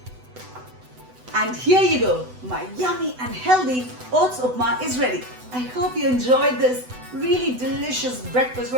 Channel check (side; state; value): left; late; 8.0 ms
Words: And here you go, my yummy and healthy oats upma is ready. I hope you enjoyed this really delicious breakfast